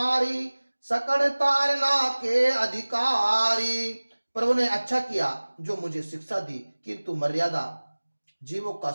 सकड़ तारना के अधिकारी। प्रभु ने अच्छा किया जो मुझे शिक्षा दी, किंतु मर्यादा जीवों का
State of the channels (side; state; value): both; inverted; correlation -1.00